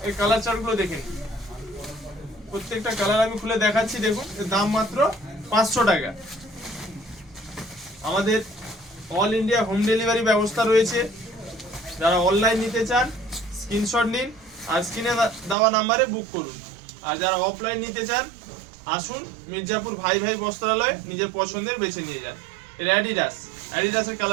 এর কালার চার্টগুলো দেখেন, প্রত্যেকটা কালার আমি খুলে দেখাচ্ছি। দেখুন, এর দাম মাত্র 500 টাকা। আমাদের অল ইন্ডিয়া হোম ডেলিভারি ব্যবস্থা রয়েছে। যারা অনলাইন নিতে চান স্ক্রিনশট নিন আর স্ক্রিনে দেওয়া নাম্বারে বুক করুন। আর যারা অফলাইন নিতে চান আসুন মির্জাপুর ভাই ভাই বস্ত্রালয়ে, নিজের পছন্দের বেছে নিয়ে যান। এর অ্যাডিডাসের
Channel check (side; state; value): left; drops out; at 15.6 s